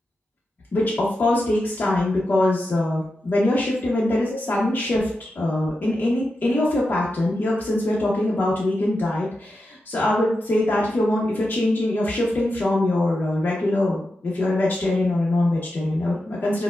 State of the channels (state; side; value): normal; both; correlation 0.89